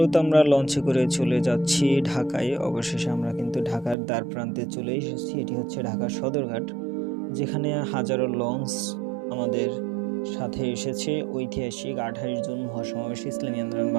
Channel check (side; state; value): left; drops out; at 4.0 s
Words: আমরা লঞ্চে করে চলে যাচ্ছি ঢাকায়। অবশেষে আমরা কিন্তু ঢাকার দ্বার প্রান্তে চলে এসেছি। এটি হচ্ছে ঢাকার সদরঘাট, যেখানে হাজারো লঞ্চ আমাদের সাথে এসেছে ঐতিহাসিক 28 জুন মহাসমাবেশ ইসলামী আন্দোলন